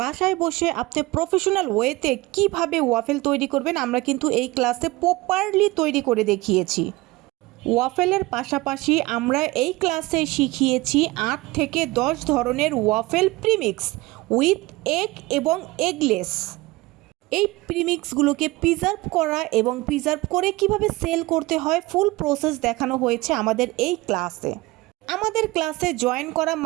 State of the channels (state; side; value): quieter; left; 20.9 dB